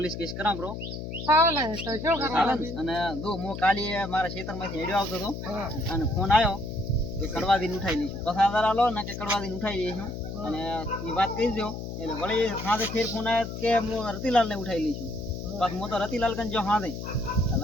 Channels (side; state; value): left; noise; hum, 7 dB below the sound